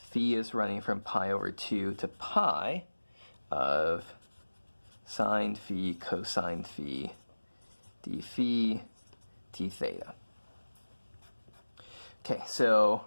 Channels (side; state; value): both; inverted; correlation -1.00